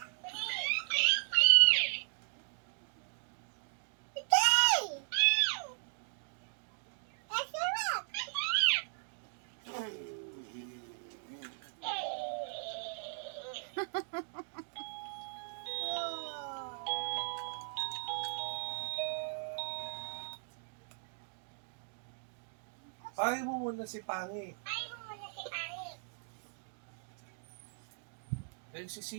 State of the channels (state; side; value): silent; left; digital silence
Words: Tawagin mo muna si pangit. Eh, si